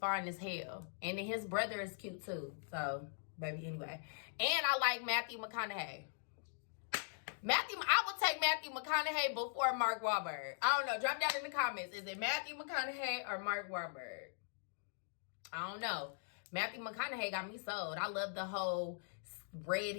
as hell. And then his brother is cute too. So, baby, anyway. And I like Matthew McConaughey. I would take Matthew McConaughey before Mark Wahlberg. I don't know. Drop down in the comments. Is it Matthew McConaughey or Mark Wahlberg? I don't know. Matthew McConaughey got me sold. I love the whole red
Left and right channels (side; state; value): right; silent; digital silence